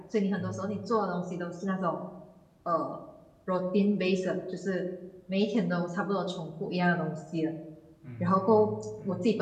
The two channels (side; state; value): both; identical; correlation 1.00